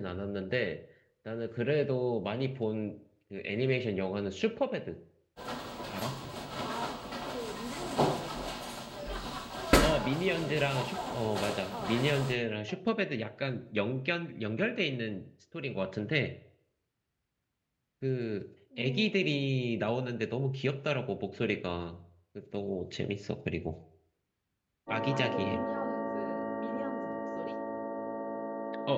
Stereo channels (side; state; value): both; identical; correlation 1.00